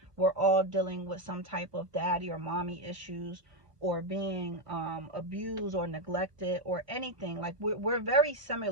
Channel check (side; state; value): left; late; 1.2 ms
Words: We're all dealing with some type of daddy or mommy issues, or being abused or neglected or anything. Like we're very